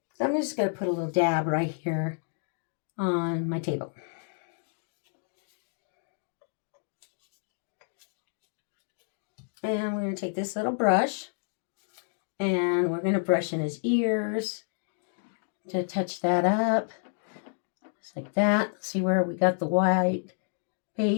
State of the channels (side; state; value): right; silent; digital silence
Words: So I'm just going to put a little dab right here on my table. And we're going to take this little brush and we're going to brush in his ears to touch that up. Just like that. See where we got the white